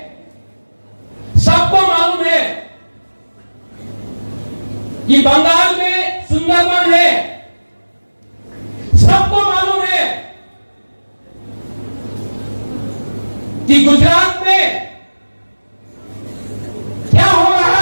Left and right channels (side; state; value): both; inverted; correlation -1.00